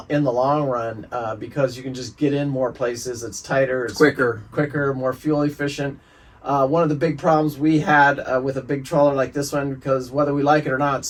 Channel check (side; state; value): both; identical; correlation 1.00